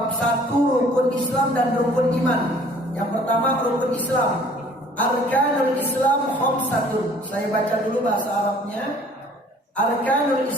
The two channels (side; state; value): both; normal; correlation 0.54